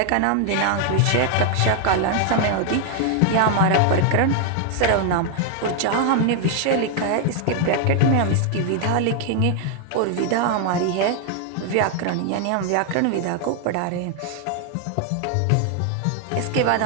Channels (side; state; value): both; different; correlation 0.00